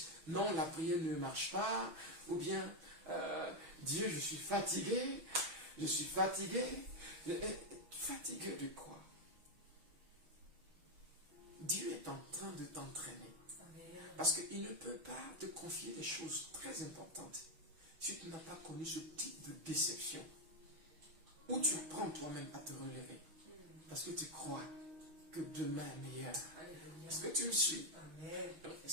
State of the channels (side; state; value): left; late; 6.2 ms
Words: non, la prière ne marche pas, ou bien, Dieu, je suis fatigué. Je suis fatigué. Fatigué de quoi? Dieu est en train de t'entraîner. Parce qu'il ne peut pas te confier des choses très importantes si tu n'as pas connu ce type de déception. Où tu apprends toi-même à te relever. Parce que tu crois que demain est meilleur. Est-ce que tu me suis?